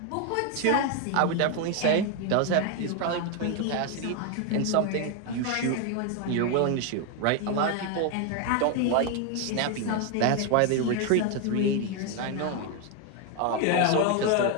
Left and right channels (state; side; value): different; both; correlation 0.01